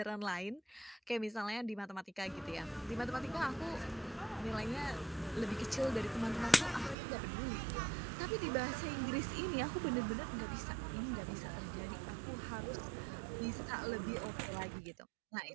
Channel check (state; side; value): drops out; left; at 7.0 s